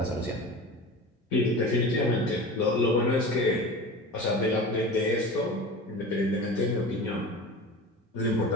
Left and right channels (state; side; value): normal; both; correlation 0.33